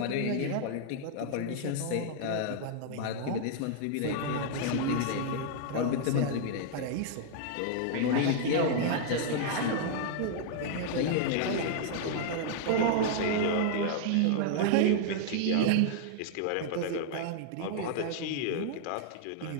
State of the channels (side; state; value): both; different; correlation -0.01